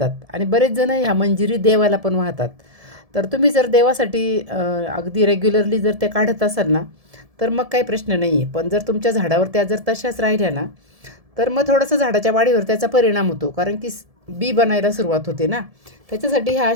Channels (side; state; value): left; late; 1.7 ms